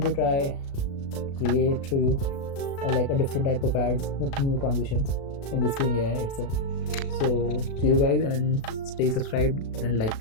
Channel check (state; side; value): late; right; 36 ms